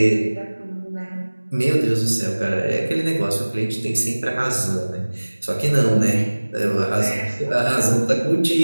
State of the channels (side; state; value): both; inverted; correlation -1.00